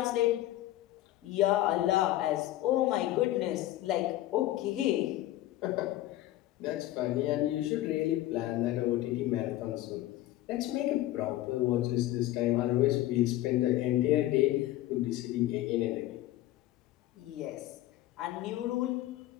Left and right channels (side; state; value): right; quieter; 15.2 dB